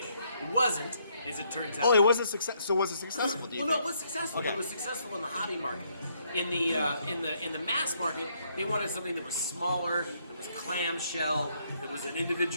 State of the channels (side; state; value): both; inverted; correlation -0.71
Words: It wasn't, as it turns out. Oh, it was a success. So was it successful? Do you Well, think? no, it was successful. Okay. It was successful in the hobby market. In the mass market, they wanted something that was smaller, that was clamshell, that was an